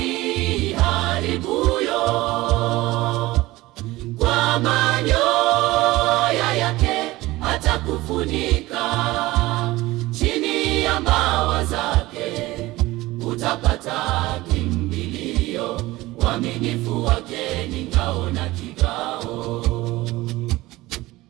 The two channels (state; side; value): quieter; left; 18.8 dB